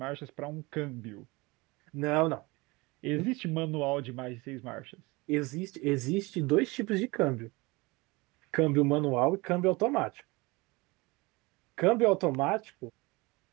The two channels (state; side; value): quieter; left; 24.1 dB